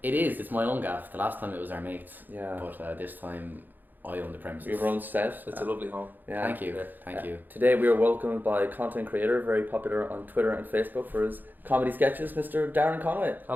It is. It's my own gaff. The last time it was our mates. Yeah. But this time I own the premises. We have our own set. It's a lovely home. Yeah. Thank you. Thank you. Today we are welcomed by a content creator, very popular on Twitter and Facebook for his comedy sketches, Mr. Darren Conway.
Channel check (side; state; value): left; late; 0.087 ms